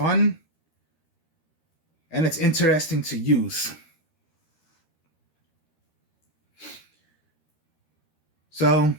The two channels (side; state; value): right; late; 13 ms